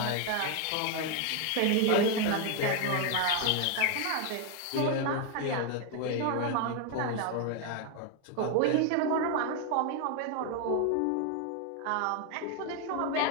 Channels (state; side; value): different; both; correlation 0.01